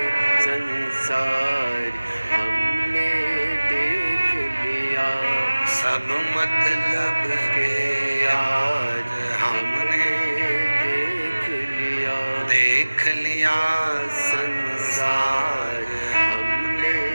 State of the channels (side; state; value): both; inverted; correlation -1.00